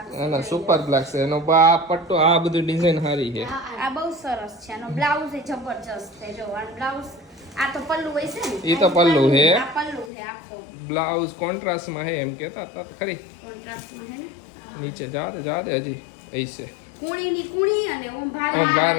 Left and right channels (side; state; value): right; drops out; at 10.1 s